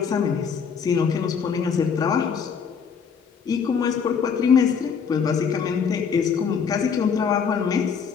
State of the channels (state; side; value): quieter; right; 6.5 dB